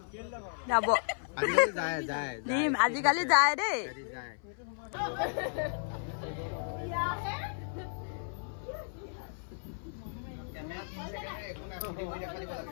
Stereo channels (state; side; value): silent; right; 55 dB below the other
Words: যাব দিম। আজিকালি যায় দেই।